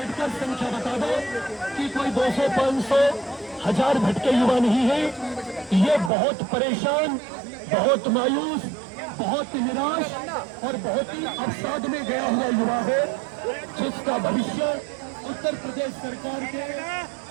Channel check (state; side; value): drops out; left; at 6.1 s